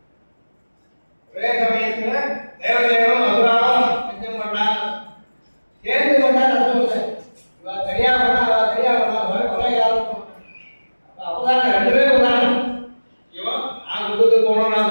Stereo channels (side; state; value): both; inverted; correlation -1.00